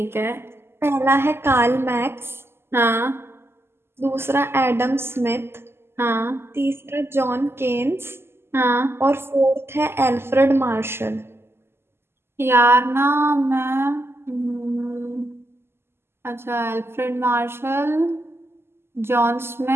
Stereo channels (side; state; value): left; late; 0.12 ms